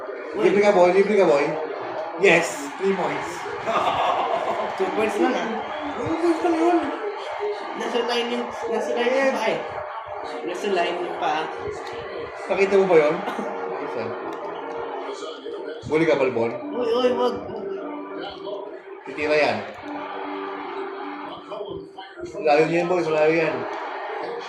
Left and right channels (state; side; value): identical; both; correlation 1.00